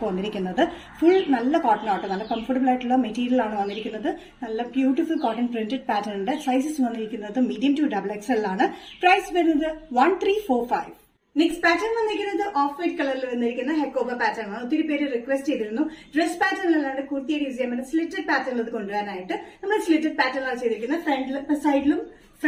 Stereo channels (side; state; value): both; identical; correlation 1.00